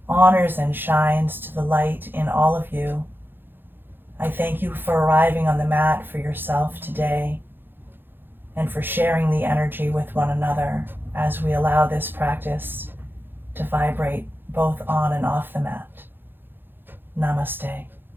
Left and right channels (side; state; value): left; late; 0.099 ms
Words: honors and shines to the light in all of you. I thank you for arriving on the mat for yourself today and for sharing the energy with one another as we allow this practice to vibrate both on and off the mat. Namaste.